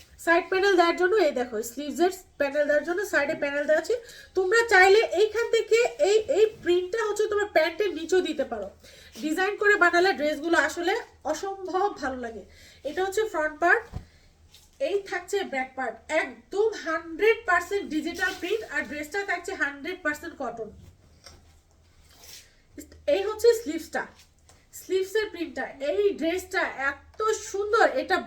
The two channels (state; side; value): identical; both; correlation 1.00